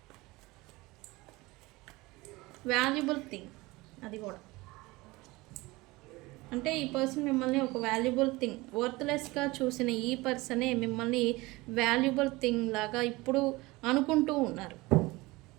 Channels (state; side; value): quieter; left; 21.8 dB